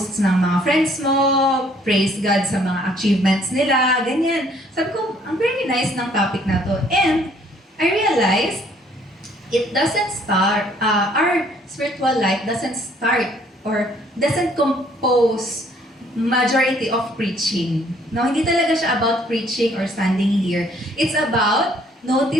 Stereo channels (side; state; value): both; normal; correlation 0.62